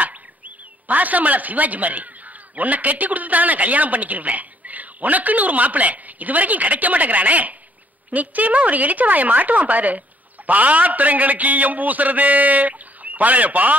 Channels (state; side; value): normal; both; correlation 0.65